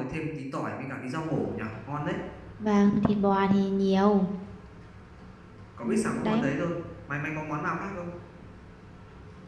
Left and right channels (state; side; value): identical; both; correlation 1.00